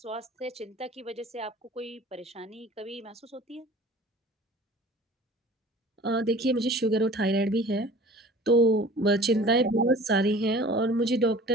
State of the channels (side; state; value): both; normal; correlation 0.45